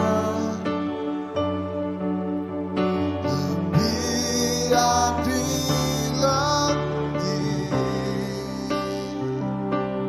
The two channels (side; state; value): both; identical; correlation 1.00